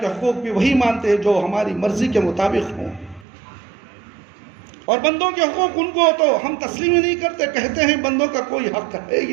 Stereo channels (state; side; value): drops out; left; at 3.2 s